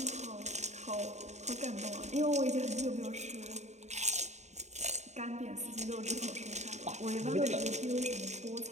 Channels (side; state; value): left; late; 0.33 ms